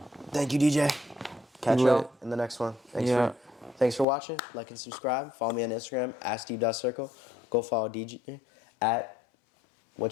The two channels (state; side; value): drops out; right; at 4.0 s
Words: Thank you, DJ. Catch Lit. y'all in the next one. Thanks for watching. Like and subscribe. Follow me on Instagram @steve.circle. Go follow DJ at